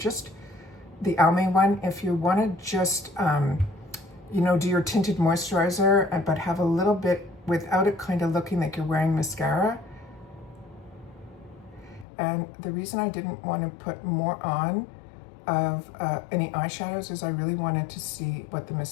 the Almay one, if you want to just, you know, do your tinted moisturizer, but have a little bit without it kind of looking like you're wearing mascara. And the reason I didn't want to put more on of any eyeshadows is I really wanted to see what the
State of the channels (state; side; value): drops out; right; at 12.1 s